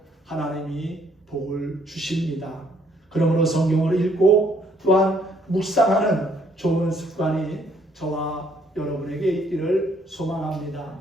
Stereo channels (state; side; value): normal; both; correlation 0.66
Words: 하나님이 복을 주십니다. 그러므로 성경을 읽고 또한 묵상하는 좋은 습관이 저와 여러분에게 있기를 소망합니다.